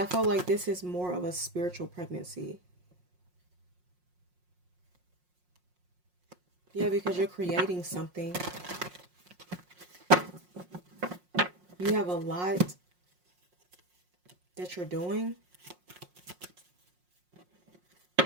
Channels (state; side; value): late; left; 5.6 ms